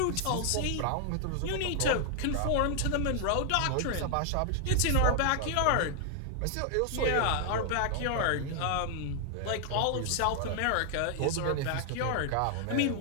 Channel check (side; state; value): both; different; correlation 0.00